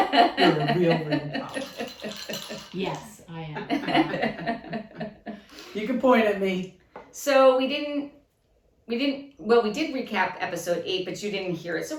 a real problem. Yes, I am. You can point at me. So we did recap episode 8, but you didn't hear it. So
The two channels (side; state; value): both; identical; correlation 1.00